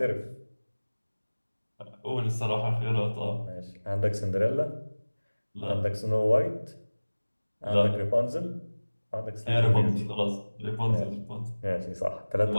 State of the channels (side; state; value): both; inverted; correlation -1.00